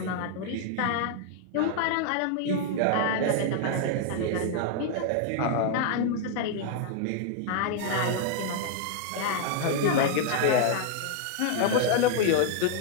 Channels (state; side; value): different; both; correlation 0.00